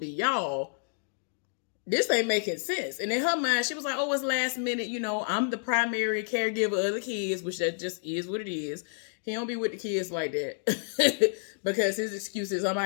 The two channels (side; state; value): right; silent; digital silence